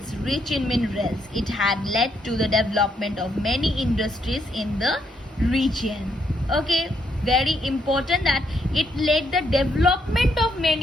rich in minerals. It had led to the development of many industries in the region. Okay, very important that it led the development of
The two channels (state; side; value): normal; both; correlation 0.75